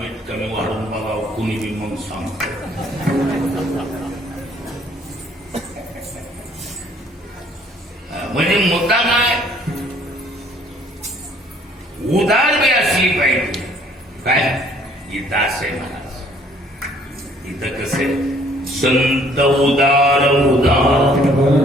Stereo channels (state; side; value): normal; both; correlation 0.60